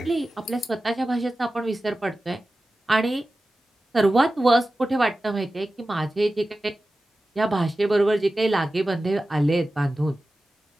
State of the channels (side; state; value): both; normal; correlation 0.95